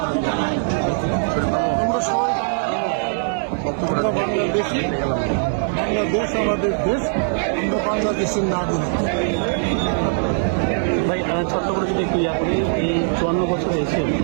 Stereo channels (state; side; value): silent; left; 65 dB below the other